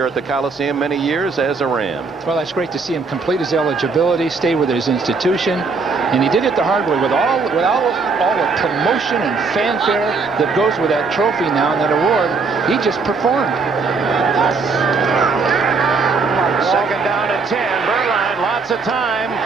at the Coliseum many years as a Ram. Well, that's great to see him complete his eligibility, stay with his institution, and he did it the hard way with all the promotion and fanfare that goes with that trophy now and that award. He just performed. Second down and 10. Berline, lots of time,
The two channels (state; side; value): quieter; left; 4.5 dB